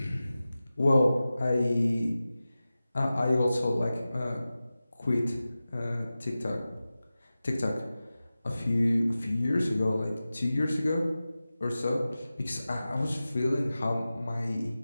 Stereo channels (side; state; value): both; inverted; correlation -0.95